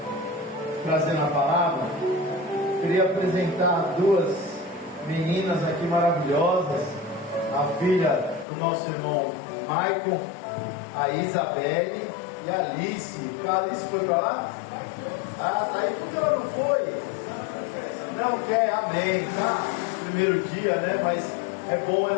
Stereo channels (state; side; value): drops out; right; at 8.5 s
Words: trazendo a palavra, queria apresentar duas meninas aqui maravilhosas, a filha do nosso irmão Michael, a Isabelle e a Alice. A Alice foi para lá? Ah, tá aí. Por que ela não foi? Não quer, amém, tá? Primeiro dia, né? Mas é bom